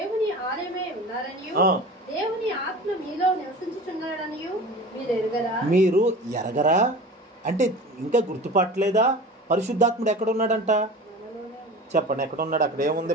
ఆలయమై ఉన్నారనియు దేవుని ఆత్మ మీలో నివసించుచున్నాడనియు మీరు ఎరుగరా? మీరు ఎరగరా అంటే ఇంకా గుర్తుపట్టలేదా? పరిశుద్ధాత్ముడు ఎక్కడ ఉన్నాడంట చెప్పండి. ఎక్కడ ఉన్నాడు? అక్కడ ఏముంది?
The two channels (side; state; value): both; normal; correlation 0.36